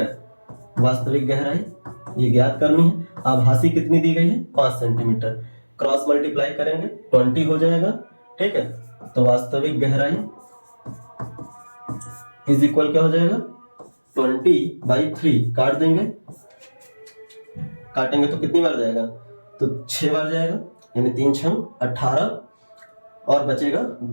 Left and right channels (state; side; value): inverted; both; correlation -1.00